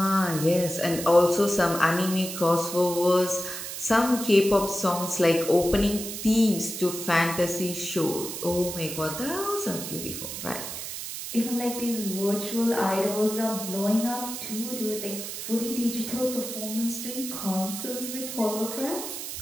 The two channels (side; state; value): right; noise; hiss, 7 dB below the sound